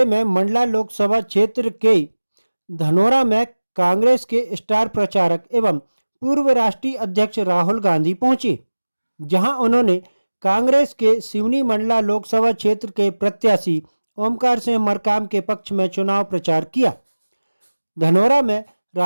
में मंडला लोकसभा क्षेत्र के धनोरा में कांग्रेस के स्टार प्रचारक एवं पूर्व राष्ट्रीय अध्यक्ष राहुल गांधी पहुंचे, जहां उन्होंने कांग्रेस के सिवनी मंडला लोकसभा क्षेत्र के प्रत्याशी ओमकार सिंह मरकाम के पक्ष में चुनाव प्रचार किया। धनोरा में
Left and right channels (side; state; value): both; inverted; correlation -1.00